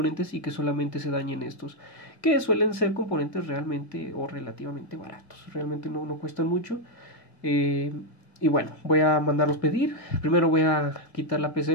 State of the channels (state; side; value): late; right; 1.8 ms